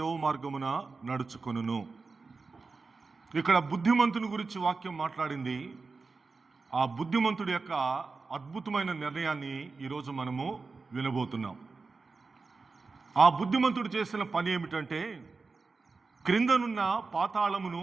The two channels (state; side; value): quieter; left; 4.2 dB